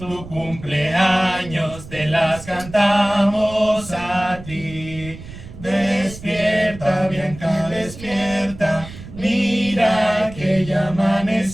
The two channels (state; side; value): noise; right; rumble, 15 dB below the sound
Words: cumpleaños te las cantamos a ti. Despierta, Bianca, despierta, mira que ya